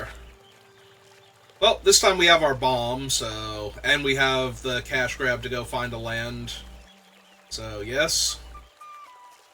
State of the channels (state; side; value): identical; both; correlation 1.00